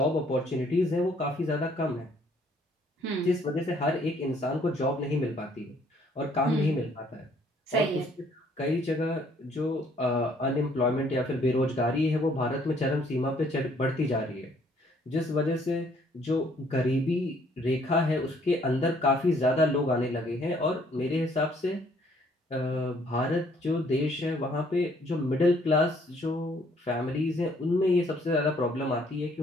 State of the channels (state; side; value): normal; both; correlation 0.63